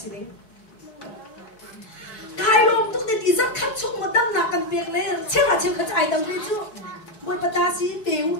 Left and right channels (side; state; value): right; late; 4.6 ms